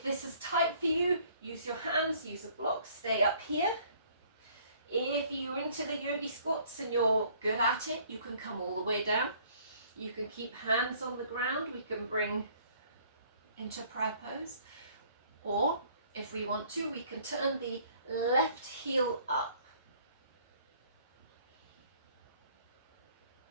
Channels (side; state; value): both; inverted; correlation -0.58